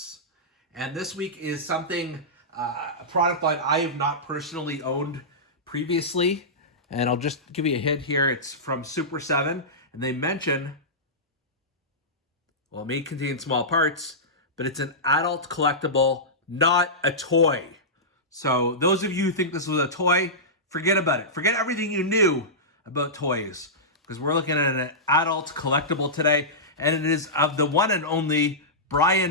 And this week is something, a product line I have not personally owned previously. And I'll just give you a hint here. It's from Super 7. And they mention, well, it may contain small parts, but it's an adult collectible, not a toy. So those of you who think this was a toy, forget about it. Forget everything you knew about toys, because we're looking at an adult collectible today, and it is of the one and only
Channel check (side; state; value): both; normal; correlation -0.15